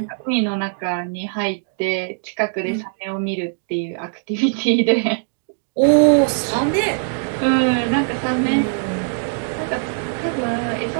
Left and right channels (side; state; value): left; silent; digital silence